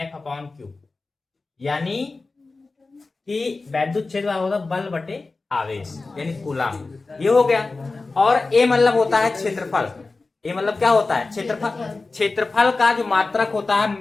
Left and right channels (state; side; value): quieter; right; 3.7 dB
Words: अपॉन क्यू, यानी कि वैद्युत क्षेत्र होता है बल बटे आवेश, यानी कूलम। ये हो गया। और ए मतलब होता है क्षेत्रफल। ए मतलब क्या होता है? क्षेत्रफल। क्षेत्रफल का जो मात्रक होता है